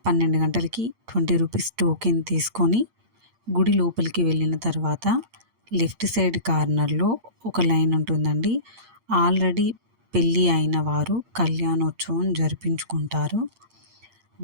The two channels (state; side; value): late; left; 8.7 ms